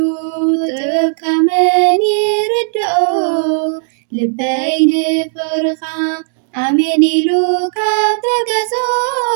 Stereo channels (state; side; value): silent; left; 70 dB below the other